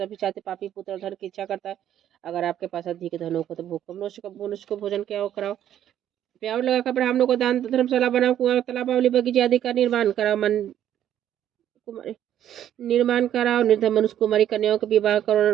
चाहते पापी पुत्र धन की इच्छा करता है। अगर आपके पास अधिक धन हो तो भूख मनुष्य को भोजन क्या कराओ, प्यार लगाकर ब्राह्मणों को दान, धर्मशाला बनाओ, कुआं तालाब बगीचे आदि का निर्माण कराओ, निर्धन मनुष्य कुमारी कन्याओं के विवाह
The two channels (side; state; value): left; quieter; 10.9 dB